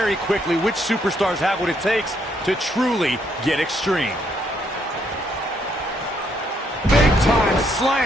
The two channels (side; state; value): both; normal; correlation 0.72